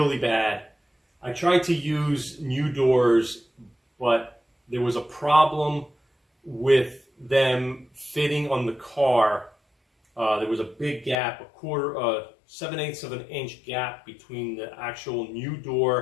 bad. I tried to use new doors, but there was a problem with them fitting on the car. There was a big gap, 7/8 of an inch gap between the actual new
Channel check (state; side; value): drops out; right; at 11.2 s